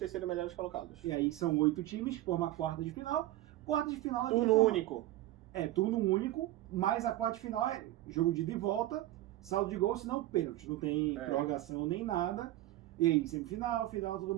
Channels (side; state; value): left; quieter; 15.6 dB